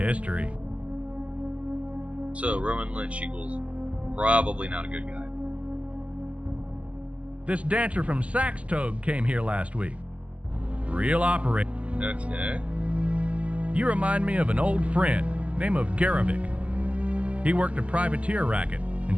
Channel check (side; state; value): left; late; 0.065 ms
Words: So, Roman Lynch equals probably not a good guy. This dancer from Saxtogue came here last week. Real operator. Okay. You remind me of an old friend, name of Garovic. He worked a privateer racket